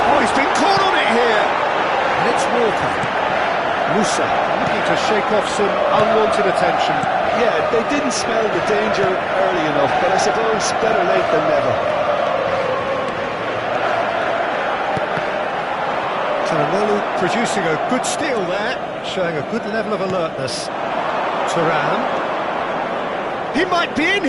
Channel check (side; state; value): both; identical; correlation 1.00